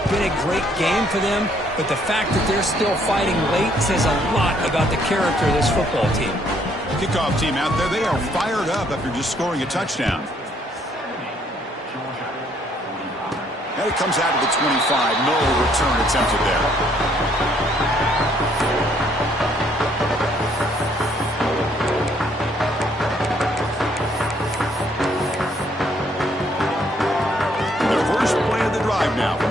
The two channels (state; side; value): normal; both; correlation 0.67